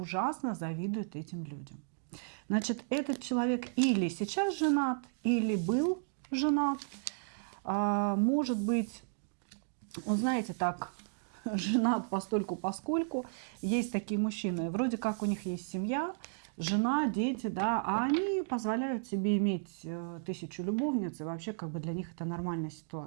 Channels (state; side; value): silent; left; digital silence